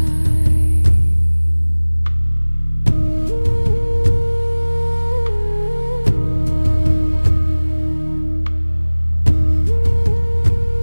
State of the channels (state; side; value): inverted; both; correlation -1.00